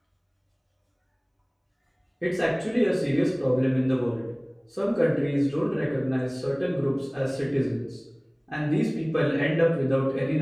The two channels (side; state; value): both; identical; correlation 1.00